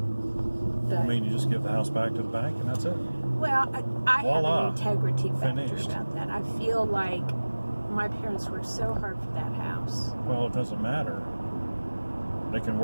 But, I mean, you just give the house back to the bank and that's it. well, I have Voila. an integrity factor Finished. about that. I feel like my parents worked so hard for that house. Well, it doesn't matter. They can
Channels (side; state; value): both; inverted; correlation -1.00